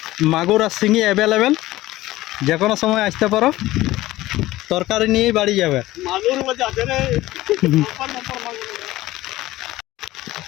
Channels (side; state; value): right; quieter; 17.0 dB